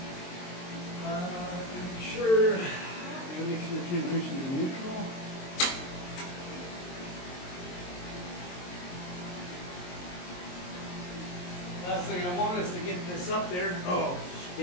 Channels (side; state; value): right; late; 22 ms